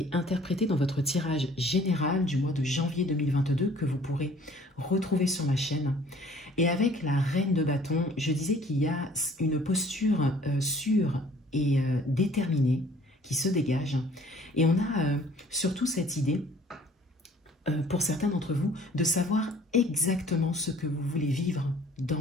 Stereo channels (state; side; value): normal; both; correlation 0.54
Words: interprétée dans votre tirage général du mois de janvier 2022 que vous pourrez retrouver sur ma chaîne. Et avec la Reine de bâton, je disais qu'il y a une posture sûre et déterminée qui se dégage. Et on a surtout cette idée, pour certains d'entre vous, de savoir exactement ce que vous voulez vivre